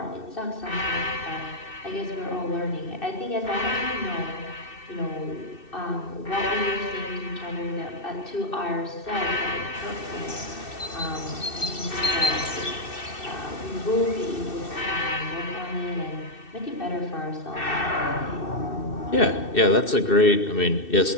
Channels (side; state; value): right; late; 2.6 ms